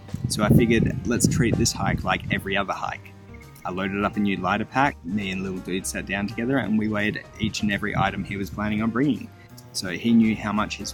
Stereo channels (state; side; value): identical; both; correlation 1.00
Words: So I figured, let's treat this hike like every other hike. I loaded up a new lighter pack. Me and Lil'Dude sat down together and we weighed each and every item he was planning on bringing. So he knew how much his